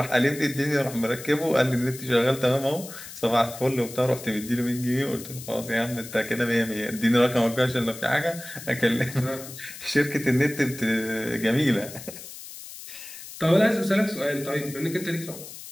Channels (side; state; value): left; noise; hiss, 13 dB below the sound